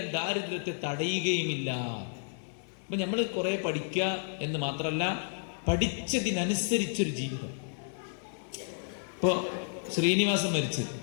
ദാരിദ്ര്യത്തെ തടയുകയുമില്ല. അപ്പൊ നമ്മൾ കുറെ പഠിക്കുക എന്ന് മാത്രമല്ല, പഠിച്ചതിനനുസരിച്ചൊരു ജീവിതം. ഇപ്പോ ശ്രീനിവാസൻ മരിച്ചു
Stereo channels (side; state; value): right; silent; digital silence